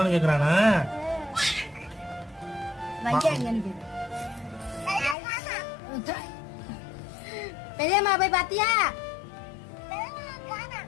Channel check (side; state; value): right; drops out; at 5.2 s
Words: கேக்குறானா? பெரியம்மா போய் பாத்தியா?